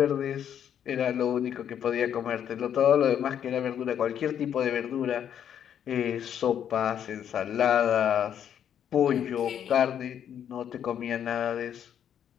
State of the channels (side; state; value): right; quieter; 9.3 dB